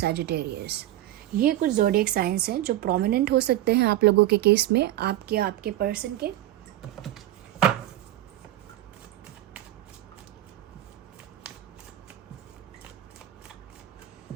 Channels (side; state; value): left; quieter; 14.1 dB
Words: ये कुछ ज़ोडिएक साइंस हैं जो प्रोमिनेंट हो सकते हैं आप लोगों के केस में, आपके पर्सन के।